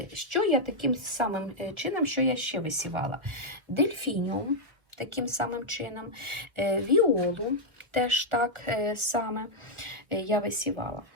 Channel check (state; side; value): late; left; 1.1 ms